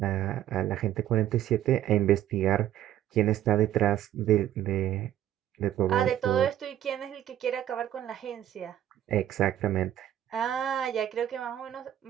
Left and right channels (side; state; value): left; quieter; 11.9 dB